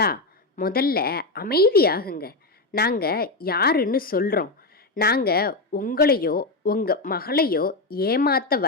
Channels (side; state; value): right; quieter; 3.2 dB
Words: முதல்ல அமைதியாகுங்க, நாங்க யாருன்னு சொல்றோம். நாங்க உங்களையோ உங்க மகளையோ ஏமாத்த